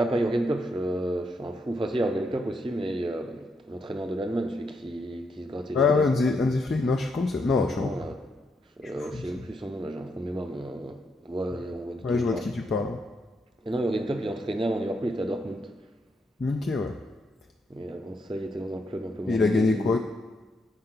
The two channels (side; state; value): both; normal; correlation 0.78